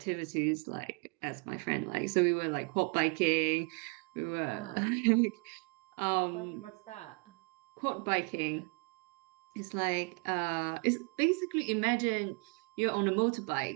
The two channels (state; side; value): quieter; left; 33.8 dB